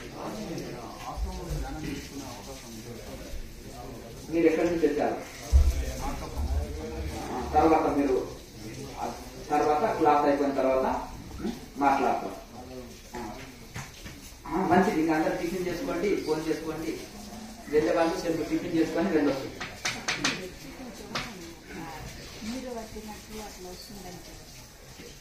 మీరు ఎక్కడి నుంచి తెచ్చారు? తర్వాత క్లాస్ అయిపోయిన తర్వాత మాట్లాడతాం. మంచిది. ఇంకా అందరు టిఫిన్ చేసుకోండి, ఫోన్ చేసుకోండి. వెళ్ళే వాళ్ళు సెల్ఫ్ టిఫిన్ చేసుకొని వెళ్ళొచ్చు.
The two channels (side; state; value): both; identical; correlation 1.00